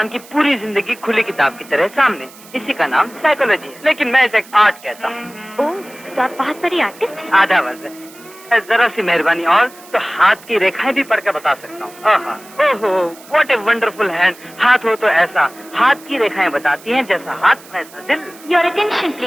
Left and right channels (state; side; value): noise; right; hiss, 21 dB below the sound